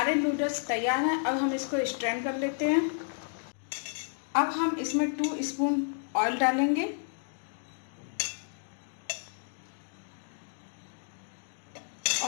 नूडल्स तैयार हैं। अब हम इसको स्ट्रेन कर लेते हैं। अब हम इसमें 2 स्पून ऑयल डालेंगे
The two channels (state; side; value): silent; right; digital silence